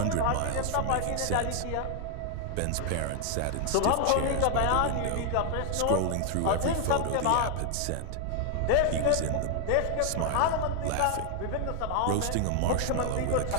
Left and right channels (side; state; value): both; different; correlation 0.00